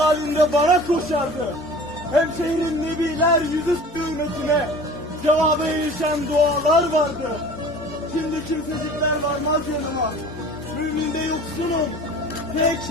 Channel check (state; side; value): normal; both; correlation 0.43